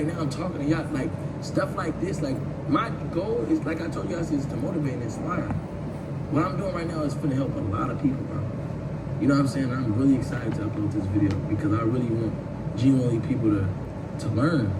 now I'm talking to y'all, like, stuff like this. Like, my goal is, like I told you guys, is to motivate and inspire. What I'm doing right now is gonna help a lot of people, bro. You know what I'm saying? I'm really excited to upload this video because I really want genuinely people to learn,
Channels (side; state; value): both; identical; correlation 1.00